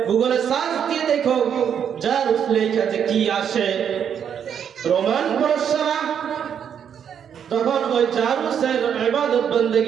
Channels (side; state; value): left; quieter; 8.2 dB